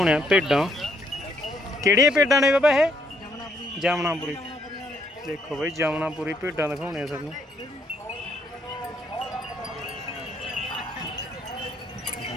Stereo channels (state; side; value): normal; both; correlation 0.71